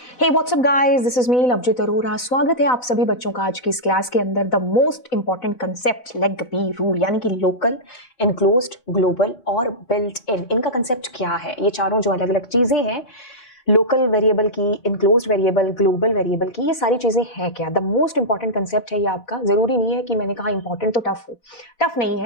Hey what's up guys, this is me Lovejeet Arora. स्वागत है आप सभी बच्चों का आज की इस क्लास के अंदर। The most important concept LEGB rule, यानी कि लोकल, एनक्लोज्ड, ग्लोबल और बिल्ट इन, इनका कंसेप्ट क्या है। ये चारों जो अलग अलग चीजें हैं, लोकल वेरिएबल की, इनक्लोज्ड वेरिएबल, ग्लोबल वेरिएबल की, ये सारी चीजें हैं क्या। द मोस्ट इंपॉर्टेंट कंसेप्ट है ये आपका। जरूरी नहीं है कि मैंने कहा इंपॉर्टेंट तो टफ हो, टफ नहीं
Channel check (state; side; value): late; right; 4.0 ms